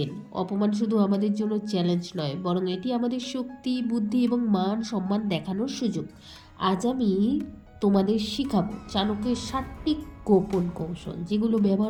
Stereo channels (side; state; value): both; identical; correlation 1.00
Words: অপমান শুধু আমাদের জন্য চ্যালেঞ্জ নয়, বরং এটি আমাদের শক্তি, বুদ্ধি এবং মান সম্মান দেখানোর সুযোগ। আজ আমি তোমাদের শিখাবো চাণক্যের 7টি গোপন কৌশল, যেগুলো